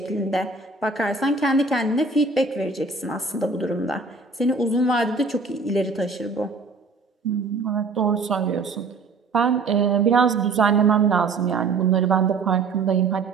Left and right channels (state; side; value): quieter; left; 4.1 dB